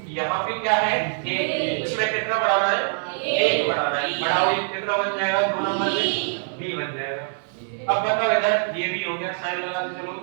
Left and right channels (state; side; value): silent; left; 63 dB below the other